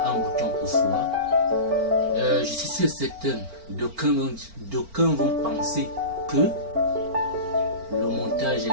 un bouton pour soi. Je suis sûr certain, d'aucuns vont penser que le montage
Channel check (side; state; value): left; late; 4.4 ms